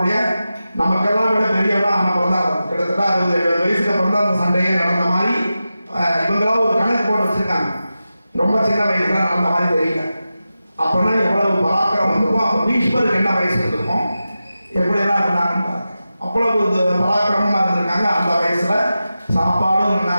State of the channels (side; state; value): both; inverted; correlation -0.93